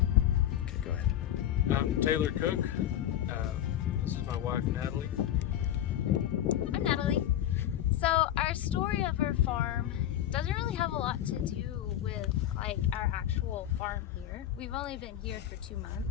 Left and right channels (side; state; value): right; quieter; 11.7 dB